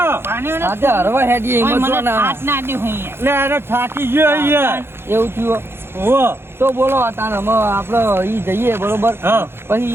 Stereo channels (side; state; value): left; late; 0.11 ms